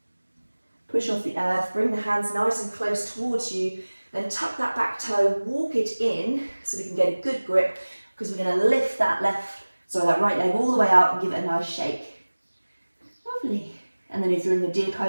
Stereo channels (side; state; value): both; inverted; correlation -1.00